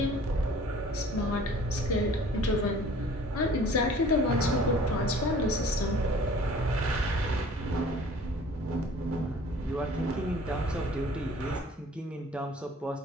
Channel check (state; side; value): normal; both; correlation 0.49